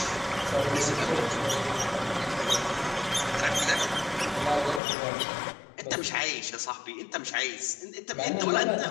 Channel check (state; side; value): drops out; right; at 4.8 s